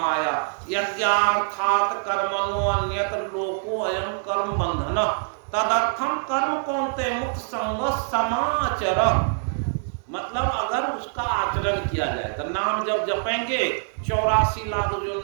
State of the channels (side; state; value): left; silent; digital silence